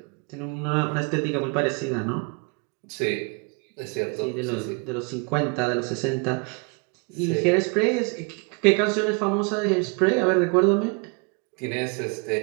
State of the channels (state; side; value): quieter; left; 33.6 dB